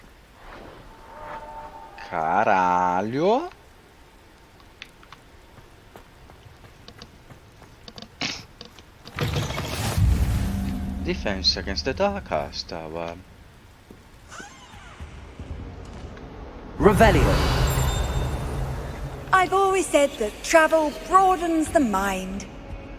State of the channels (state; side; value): identical; both; correlation 1.00